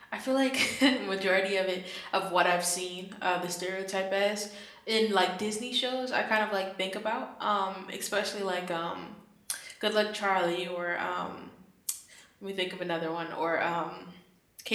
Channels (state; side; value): identical; both; correlation 1.00